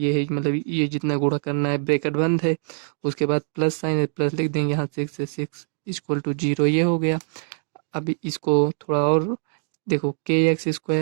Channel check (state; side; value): silent; left; digital silence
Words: है, मतलब ये जितना गुणा करना है ब्रैकेट बंद है। उसके बाद प्लस साइन है, प्लस लिख देंगे यहाँ 6 से 6 इक्वल टू 0 ये हो गया। अब इसको थोड़ा और देखो,